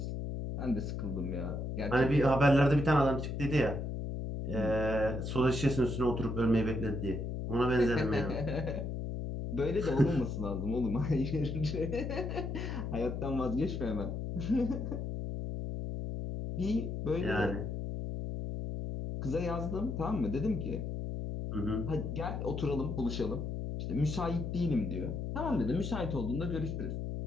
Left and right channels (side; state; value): left; noise; hum, 4 dB below the sound